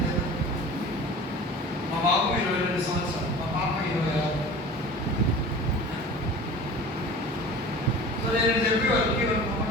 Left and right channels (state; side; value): normal; both; correlation 0.39